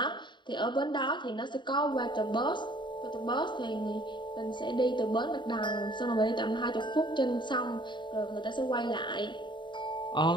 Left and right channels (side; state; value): right; late; 0.23 ms